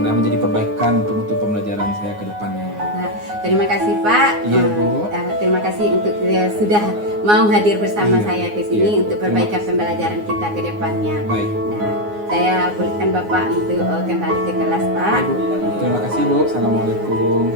menjadi perbaikan untuk pembelajaran saya ke depannya. Nah, terima kasih Pak. Iya, Bu. Terima kasih untuk sudah mau hadir bersama Iya, saya ke sini iya. untuk perbaikan pembelajaran kita ke depannya. Baik. Nah, saya bolehkan Bapak untuk kembali ke kelas Pak. Ibu. Terima kasih Bu. Assalamualaikum.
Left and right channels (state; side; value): late; left; 9.6 ms